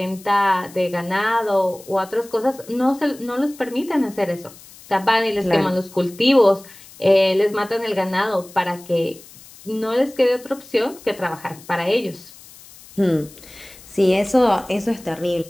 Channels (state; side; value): noise; left; hiss, 21 dB below the sound